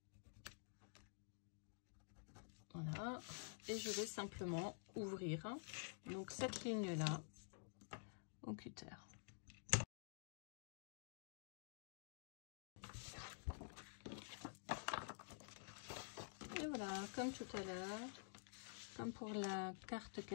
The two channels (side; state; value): right; silent; digital silence